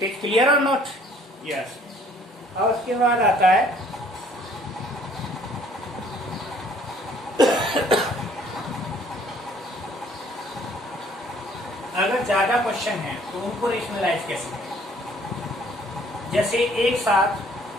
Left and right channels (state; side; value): normal; both; correlation 0.59